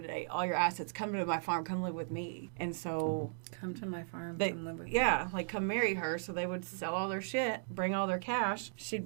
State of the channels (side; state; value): left; silent; digital silence